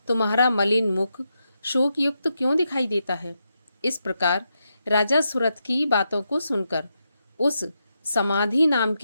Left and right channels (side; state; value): both; inverted; correlation -0.85